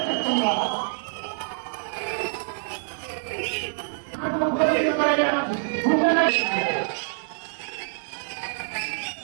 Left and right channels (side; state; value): left; silent; 59 dB below the other